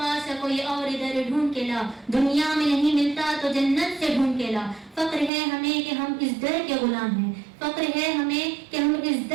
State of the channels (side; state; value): left; drops out; at 5.3 s